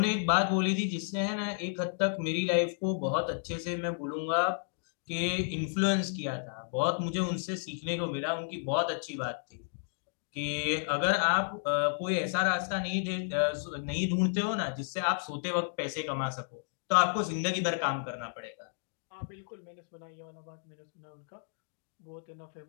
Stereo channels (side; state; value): right; silent; digital silence